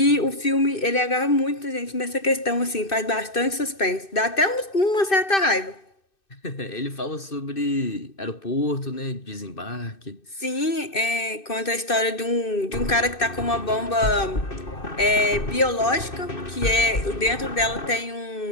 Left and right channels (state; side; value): late; right; 2.6 ms